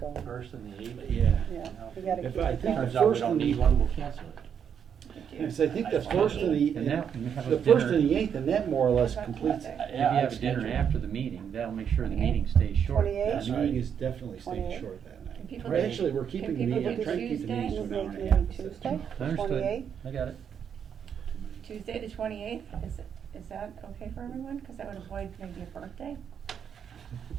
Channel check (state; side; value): quieter; left; 7.9 dB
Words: 1st and the 8th. Yeah. Yeah, you gotta If keep I it think going. Turns out we First don't and the- need one, we'll cancel it. Yes, I think the first and And that- and have a the first dinner. and the 8th, and that more or less completes it. If you have a dinner after the meeting, that'll make sure the meeting stays short. 28th? The meeting is definitely staying 28th. short that night. Can people Or do- actually, we're keeping the can people meeting, I'm do trying to keep the Tuesday? meetings to You an hour make and a half. maybe Tuesday, Understood. 28th? I got it. Tuesday, the 28th, is that okay for everyone? Because that would avoid maybe a birthday.